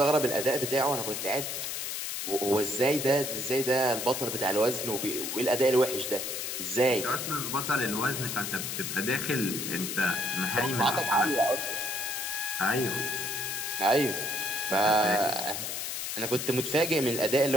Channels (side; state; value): left; noise; hiss, 4 dB below the sound